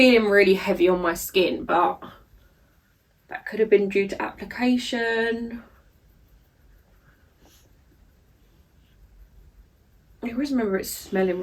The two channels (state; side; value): identical; both; correlation 1.00